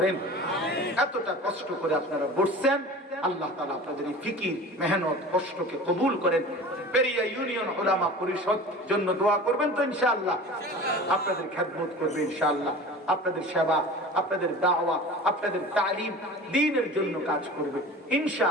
এতটা কষ্ট করে আপনারা বসছেন, আল্লাহ তাআলা আপনাদের এই ফিকির, মেহনত, কষ্টকে কবুল করেন। পেরিয়া ইউনিয়ন উলামা পরিষদ জন্য দোয়া করবেন তো ইনশাআল্লাহ, আপনাদের খেদমত করবে ইনশাআল্লাহ, আপনাদের সেবা, আপনাদের দাওয়া, আপনাদের তালিম, দ্বীনের জন্য কাজ করবে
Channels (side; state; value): both; normal; correlation 0.38